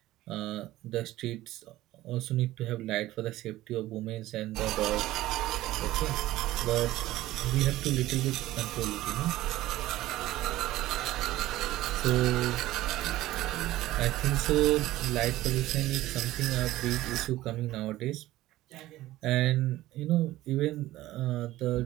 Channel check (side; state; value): left; quieter; 16.0 dB